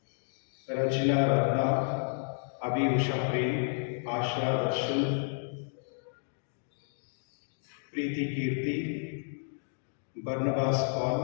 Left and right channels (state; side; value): silent; right; digital silence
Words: Rajina, Ratna, Abi, Usha, Prem, Asha, Darshan, Preethi, Keerthi, Barnabas,